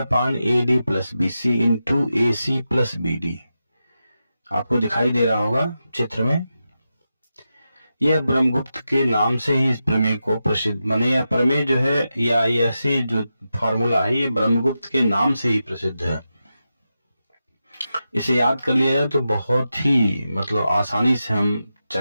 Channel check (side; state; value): both; inverted; correlation -0.90